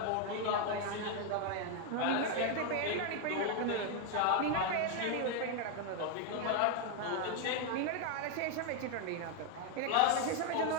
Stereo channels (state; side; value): different; both; correlation 0.01